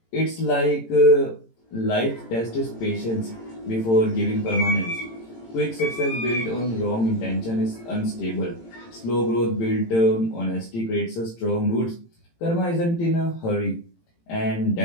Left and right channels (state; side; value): late; right; 18 ms